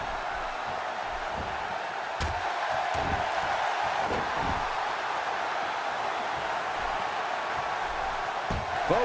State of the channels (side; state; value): both; identical; correlation 1.00